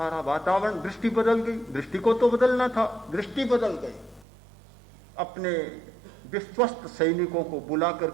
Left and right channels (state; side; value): drops out; left; at 4.2 s